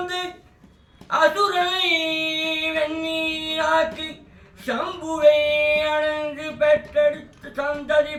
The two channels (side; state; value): both; identical; correlation 1.00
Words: அசுரனை வெண்ணீராக்கி சம்புவை அணைந்து பெற்றெடுத்து சந்ததி